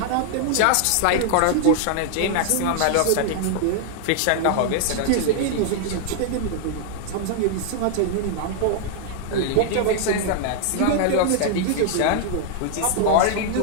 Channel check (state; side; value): different; both; correlation -0.01